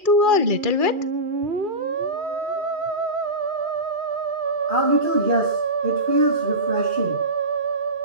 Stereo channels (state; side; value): late; left; 2.4 ms